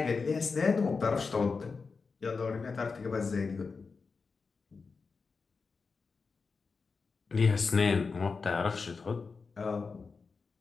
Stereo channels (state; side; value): quieter; right; 4.7 dB